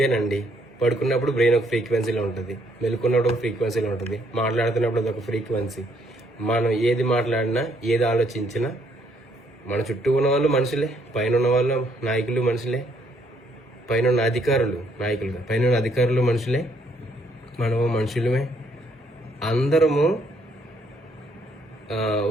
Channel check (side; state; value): both; normal; correlation 0.69